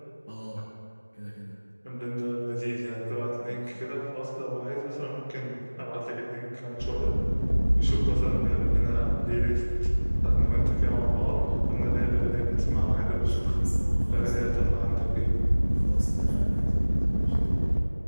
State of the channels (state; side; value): inverted; both; correlation -1.00